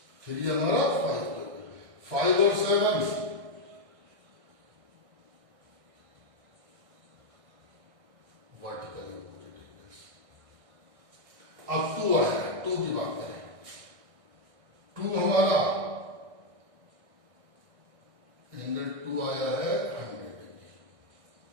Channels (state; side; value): late; left; 1.6 ms